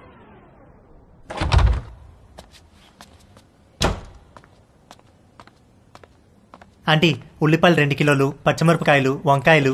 ఆంటీ ఉల్లిపాయలు 2 కిలోలు, పచ్చిమిరపకాయలు, వంకాయలు,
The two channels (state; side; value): identical; both; correlation 1.00